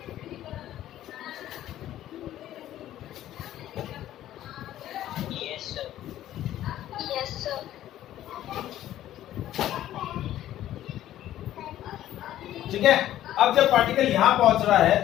ठीक है, अब जब पार्टिकल यहां पहुंच रहा है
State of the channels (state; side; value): quieter; right; 12.9 dB